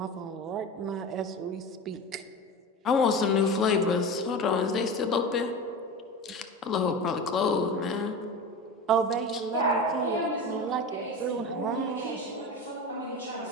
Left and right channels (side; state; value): both; normal; correlation 0.28